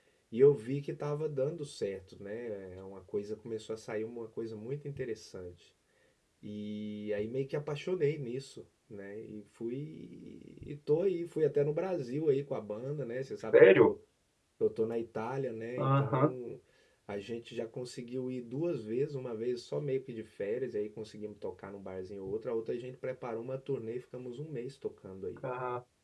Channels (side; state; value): both; identical; correlation 1.00